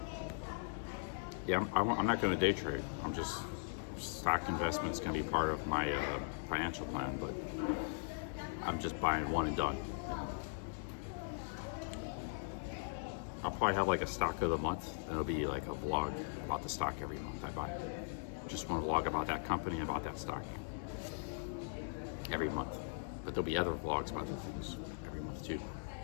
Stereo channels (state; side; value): silent; right; digital silence